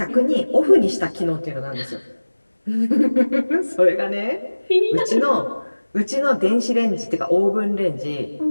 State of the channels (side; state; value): both; inverted; correlation -1.00